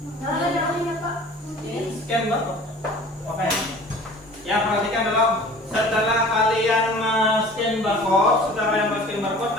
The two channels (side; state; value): both; normal; correlation 0.45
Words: Scan barcode. Oke. Ya, perhatikan dulu. Setelah kalian scan barcode,